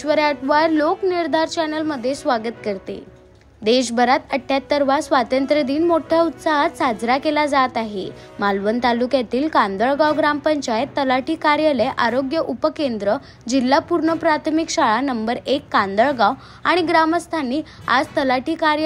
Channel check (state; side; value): identical; both; correlation 1.00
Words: अटवार लोकनिर्धार चॅनलमध्ये स्वागत करते। देशभरात 78वा स्वातंत्र्य दिन मोठ्या उत्साहात साजरा केला जात आहे। मालवण तालुक्यातील कांदळगाव ग्रामपंचायत, तलाठी कार्यालय, आरोग्य उपकेंद्र, जिल्हा पूर्ण प्राथमिक शाळा नंबर 1 कांदळगाव आणि ग्रामस्थांनी आज तलाठी